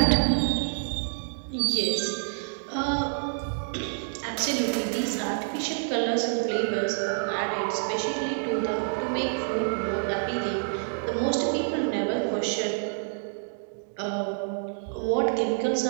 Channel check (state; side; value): silent; left; digital silence